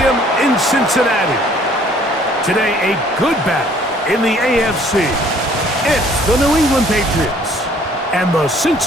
in Cincinnati. Today, a good battle in the AFC. It's the New England Patriots and the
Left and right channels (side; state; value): both; normal; correlation 0.58